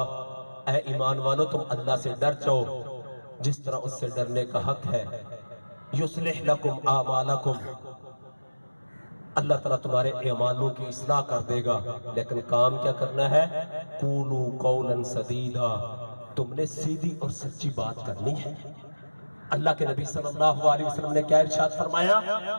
اے ایمان والو تم اللہ سے ڈر جاؤ جس طرح اس سے ڈرنے کا حق ہے، یصلح لکم اعمالکم، اللہ تعالیٰ تمہارے اعمالوں کی اصلاح کر دے گا، لیکن کام کیا کرنا ہے؟ قولوا قولا سدیدا، تم نے سیدھی اور سچی بات کرنی ہے۔ اللہ کے نبی صلی اللہ علیہ وسلم نے کیا ارشاد فرمایا؟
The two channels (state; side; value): inverted; both; correlation -1.00